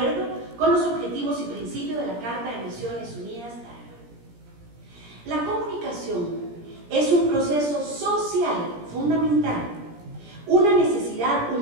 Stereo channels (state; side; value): late; left; 17 ms